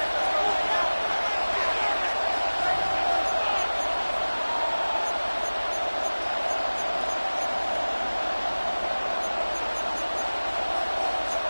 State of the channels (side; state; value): both; inverted; correlation -1.00